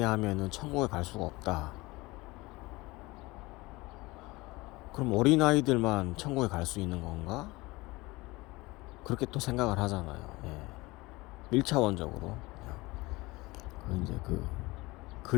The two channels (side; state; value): right; quieter; 21.9 dB